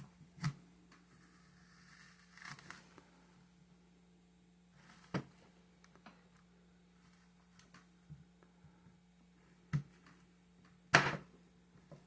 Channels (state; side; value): identical; both; correlation 1.00